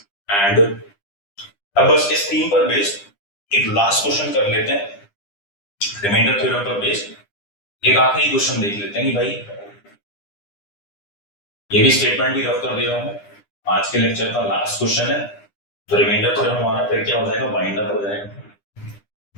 एंड अब बस इस थीम पर बेस्ड एक लास्ट क्वेश्चन कर लेते हैं रिमाइंडर थ्योरम पर बेस्ड। एक आखिरी क्वेश्चन देख लेते हैं कि भाई, ये भी स्टेटमेंट भी रफ कर दे रहा हूं, आज के लेक्चर का लास्ट क्वेश्चन है, तो रिमाइंडर थ्योरम हमारा फिर क्या हो जाएगा, वाइंड अप हो जाएगा।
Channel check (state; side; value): late; right; 9.9 ms